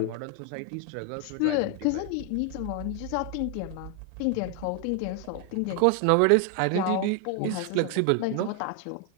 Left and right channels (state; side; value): different; both; correlation 0.01